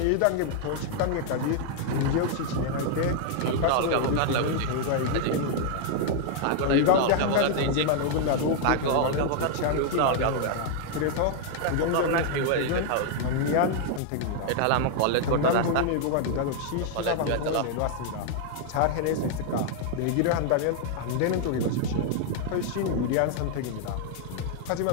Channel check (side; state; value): both; different; correlation 0.00